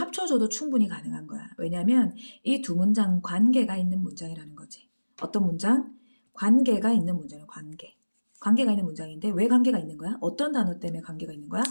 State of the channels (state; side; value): inverted; both; correlation -1.00